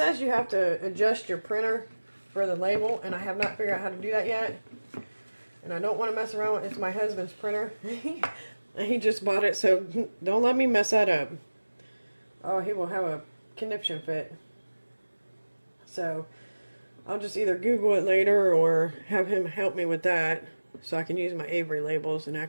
you have to adjust your printer for the label, and I have not figured out how to do that yet. And I don't want to mess around with it. It's my husband's printer. He just bought it, so don't let me mess that up. Oh, he will have a conniption fit. So I'll just either Google it later or have him help me with that so I can use my Avery labels and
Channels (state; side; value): inverted; both; correlation -1.00